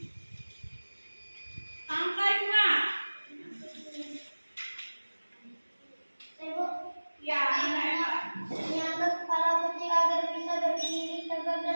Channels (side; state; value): both; inverted; correlation -1.00